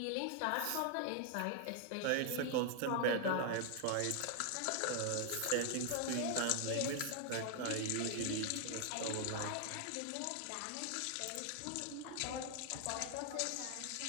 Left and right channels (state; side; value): different; both; correlation 0.00